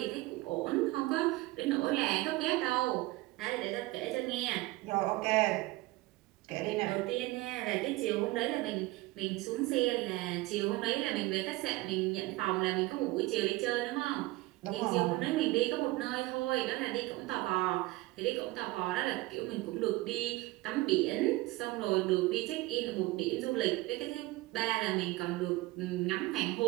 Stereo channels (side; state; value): left; quieter; 19.9 dB